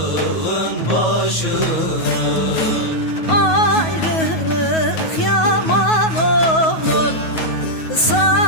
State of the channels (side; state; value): right; late; 9.3 ms